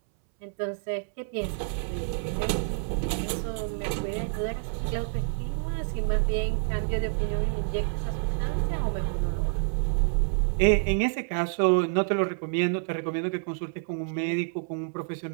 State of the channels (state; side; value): silent; left; 59 dB below the other